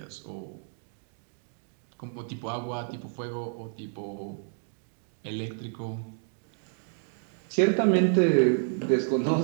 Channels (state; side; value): silent; left; digital silence